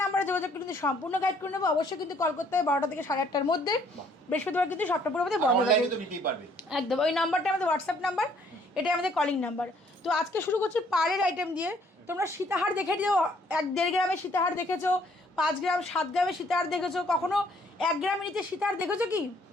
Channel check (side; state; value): both; normal; correlation 0.63